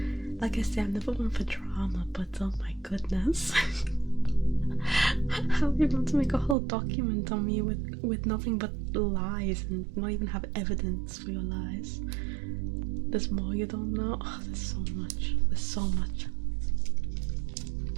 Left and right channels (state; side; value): drops out; left; at 6.6 s